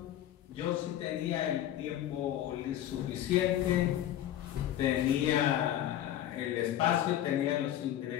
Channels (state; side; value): quieter; right; 12.1 dB